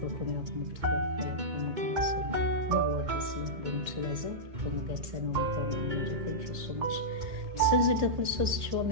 coming up with thank you so much since it was so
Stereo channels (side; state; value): left; late; 1.7 ms